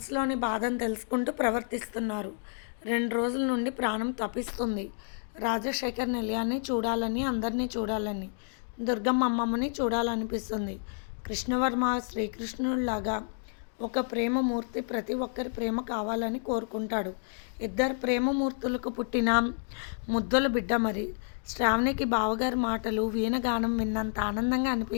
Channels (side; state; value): right; silent; 58 dB below the other